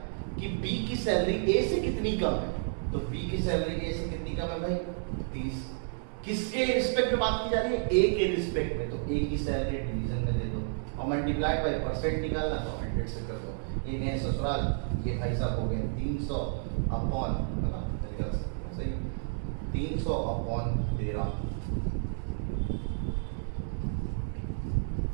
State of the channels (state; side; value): silent; left; 57 dB below the other